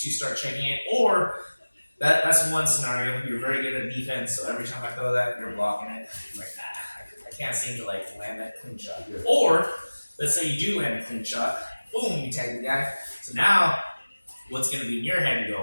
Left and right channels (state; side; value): inverted; both; correlation -1.00